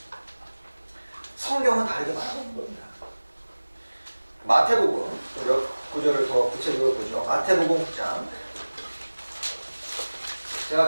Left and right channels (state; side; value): inverted; both; correlation -1.00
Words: 성경은 다르게 말하고 있는 겁니다. 마태복음, 몇 구절을 더 구체적으로 보죠. 마태복음 9장.